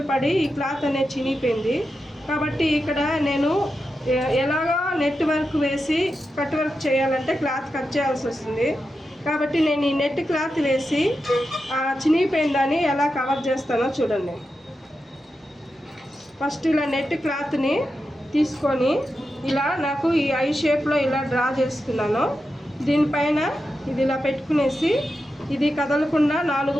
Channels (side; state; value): both; normal; correlation 0.89